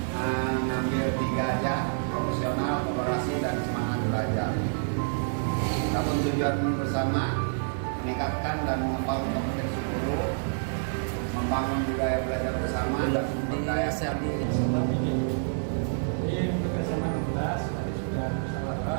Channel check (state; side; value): silent; left; digital silence